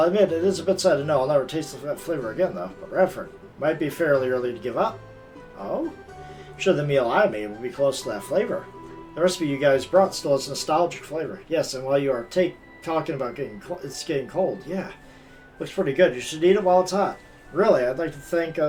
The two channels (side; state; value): both; identical; correlation 1.00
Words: admit, it is a bit sad to know I'll never taste that flavor again, though. But Radford, might be fairly early to give up. Oh? I'm sure the meal I made will be close to that flavor. The recipe you guys brought still has nostalgic flavor. Yes, and while you are talking about it's getting cold, yeah. Looks pretty good. You should eat it while it's hot. Really, I'd like to thank